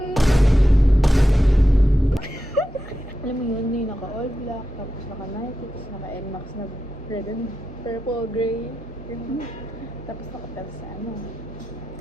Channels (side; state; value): both; normal; correlation 0.89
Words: Alam mo yun, yung naka-all black, tapos naka-Nike, tapos naka-NMAX na red and purple, gray. Tapos naka-pels sa ano.